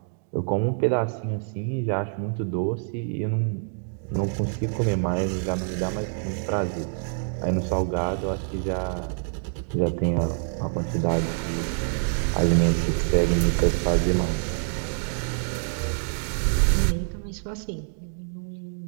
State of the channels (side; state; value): left; silent; digital silence